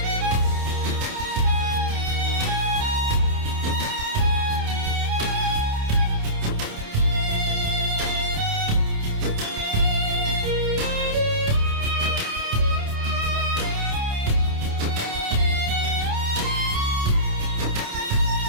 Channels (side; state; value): left; late; 28 ms